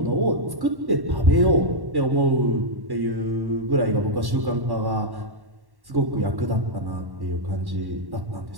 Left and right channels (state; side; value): late; left; 1.1 ms